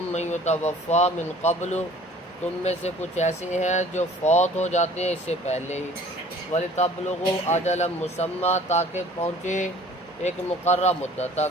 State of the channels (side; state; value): both; normal; correlation 0.51